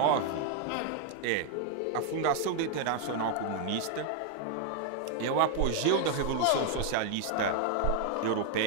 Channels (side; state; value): both; different; correlation 0.00